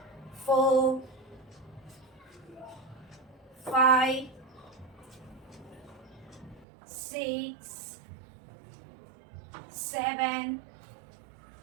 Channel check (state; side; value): drops out; left; at 6.7 s